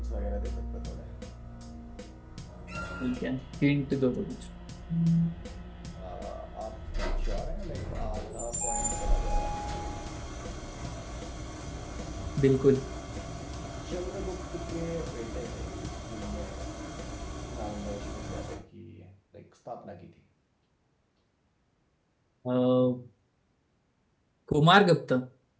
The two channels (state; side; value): identical; both; correlation 1.00